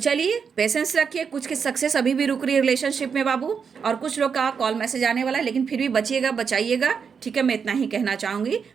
पेशेंस रखिए, कुछ की सक्सेस अभी भी रुक रही है रिलेशनशिप में बाबू, और कुछ लोग का कॉल मैसेज आने वाला है, लेकिन फिर भी बचिएगा, बचाइएगा, ठीक है। मैं इतना ही कहना चाहूँगी।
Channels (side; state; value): left; quieter; 6.3 dB